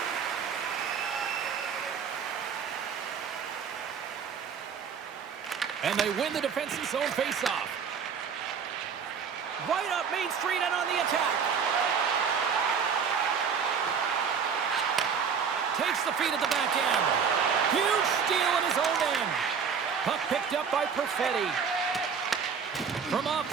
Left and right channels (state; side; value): quieter; left; 6.5 dB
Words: And they win the defensive zone faceoff. Right up Main Street and on the attack. Takes the feed at the back end. Huge steal in his own end. Puck picked up by Perfetti. From off